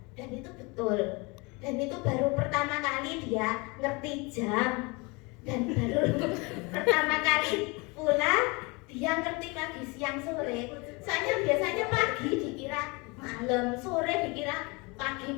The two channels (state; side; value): quieter; right; 27.5 dB